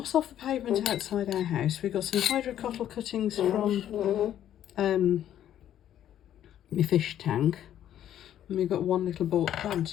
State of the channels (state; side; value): quieter; right; 11.0 dB